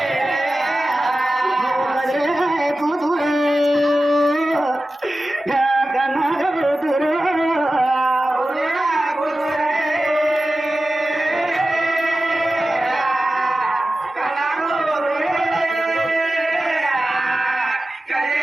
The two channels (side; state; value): both; normal; correlation 0.94